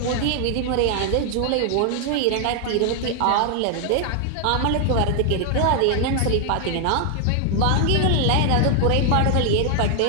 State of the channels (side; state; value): both; different; correlation 0.00